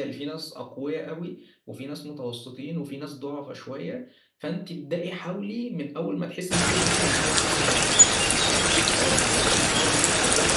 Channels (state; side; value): identical; both; correlation 1.00